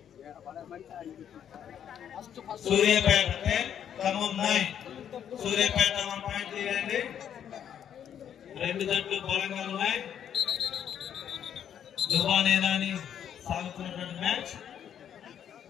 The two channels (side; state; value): right; quieter; 9.3 dB